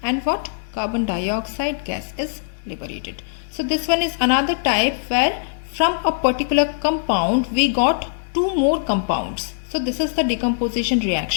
and what? Carbon dioxide gas is liberated. So this one is another type where from a particular compound we got two more compounds. So this is the decomposition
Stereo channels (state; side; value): silent; right; digital silence